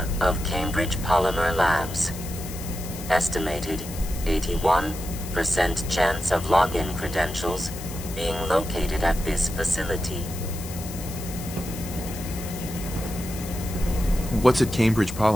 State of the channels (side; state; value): left; noise; hiss, 13 dB below the sound